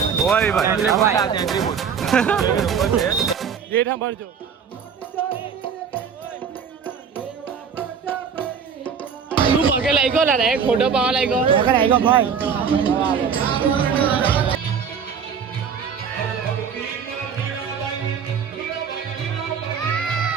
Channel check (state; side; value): quieter; left; 6.8 dB